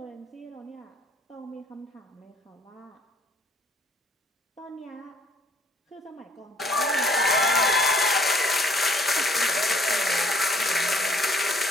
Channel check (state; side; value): normal; both; correlation 0.60